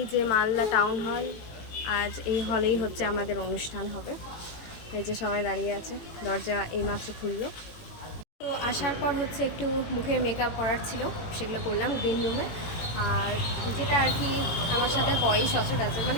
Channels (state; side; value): late; right; 18 ms